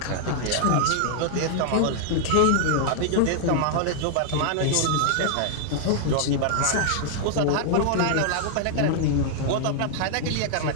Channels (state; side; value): different; both; correlation -0.01